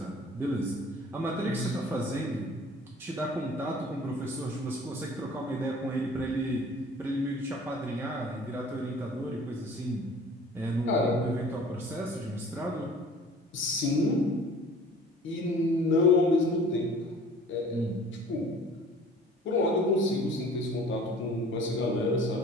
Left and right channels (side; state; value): both; normal; correlation 0.48